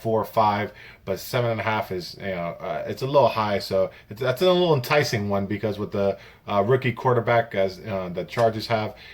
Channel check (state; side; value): identical; both; correlation 1.00